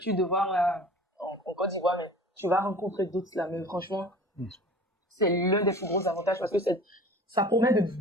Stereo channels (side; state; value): both; normal; correlation 0.42